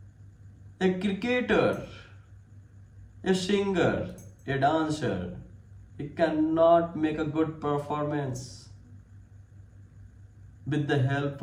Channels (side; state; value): both; identical; correlation 1.00